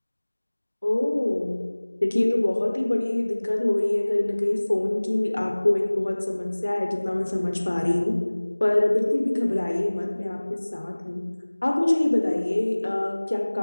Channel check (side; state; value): both; inverted; correlation -1.00